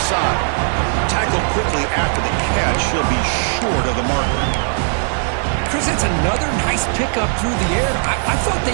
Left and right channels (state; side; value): silent; left; digital silence